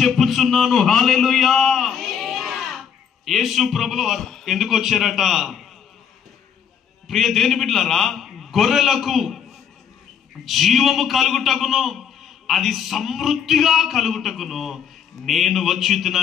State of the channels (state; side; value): quieter; right; 7.8 dB